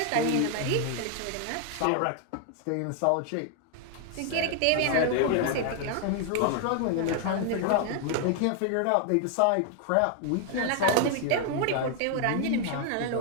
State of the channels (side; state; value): both; different; correlation 0.00